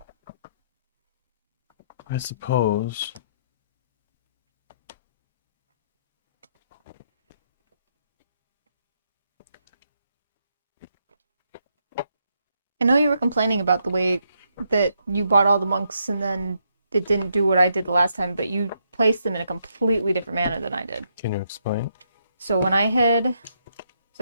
I suppose. I know you were complaining about the way that you bought all the monks and then it didn't do what I did the last time, but you placed them in a completely different manner than I did. Can you explain? So when I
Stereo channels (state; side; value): inverted; both; correlation -0.78